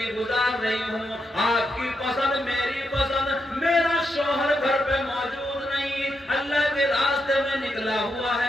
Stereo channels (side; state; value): both; normal; correlation 0.83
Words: گزار رہی ہوں، آپ کی پسند میری پسند، میرا شوہر گھر پہ موجود نہیں، اللہ کے راستے میں نکلا ہوا